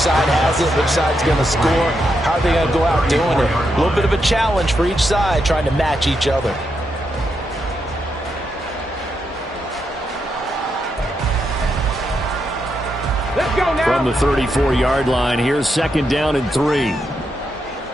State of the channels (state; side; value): normal; both; correlation 0.82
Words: has it? Which side's going to score? How are they going to go out doing it? A little bit of a challenge for each side, trying to match each other. Let's go now. From the 34-yard line, here's 2nd down and 3.